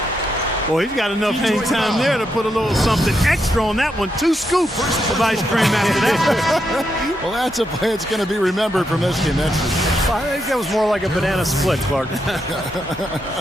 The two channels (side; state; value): both; normal; correlation 0.82